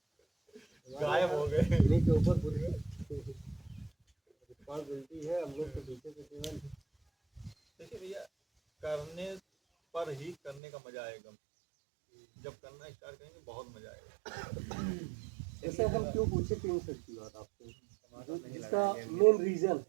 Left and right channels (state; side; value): drops out; left; at 10.6 s